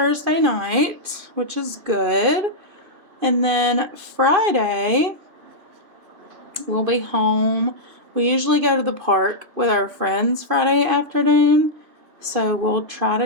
night, which is good. And then Friday, we'll be home. We usually go to the park with our friends Friday afternoon. So we'll try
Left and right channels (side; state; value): left; late; 2.5 ms